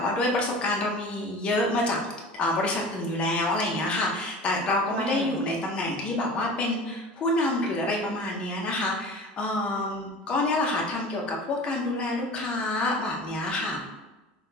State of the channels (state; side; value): normal; both; correlation 0.38